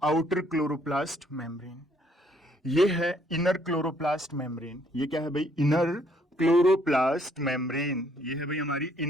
आउटर क्लोरोप्लास्ट मेम्ब्रेन। ये है इनर क्लोरोप्लास्ट मेम्ब्रेन। ये क्या है भाई? Inner chloroplast membrane. ये है भाई हमारी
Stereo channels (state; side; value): normal; both; correlation 0.66